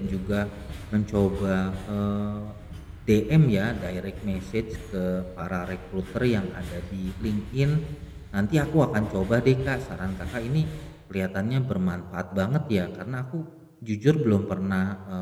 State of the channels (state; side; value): identical; both; correlation 1.00